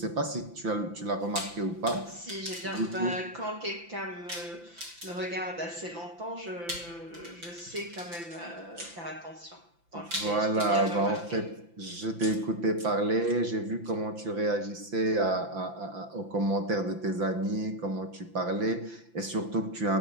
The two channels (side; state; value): left; late; 5.9 ms